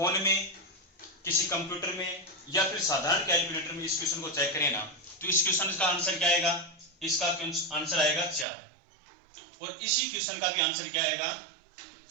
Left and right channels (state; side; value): drops out; left; at 8.5 s